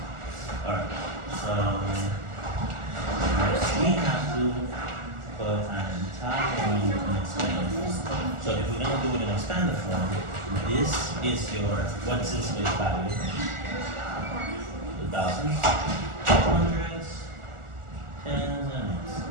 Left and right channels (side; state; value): left; late; 1.4 ms